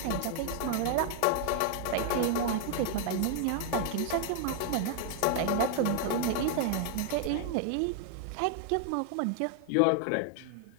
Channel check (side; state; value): both; different; correlation 0.00